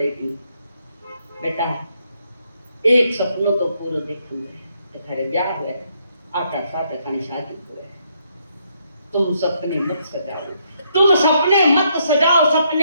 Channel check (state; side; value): inverted; both; correlation -0.74